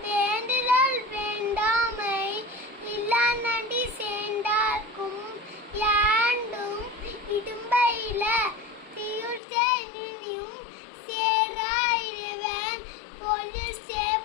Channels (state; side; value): drops out; right; at 9.4 s